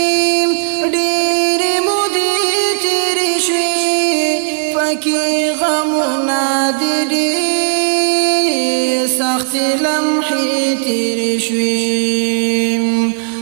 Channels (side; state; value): left; silent; digital silence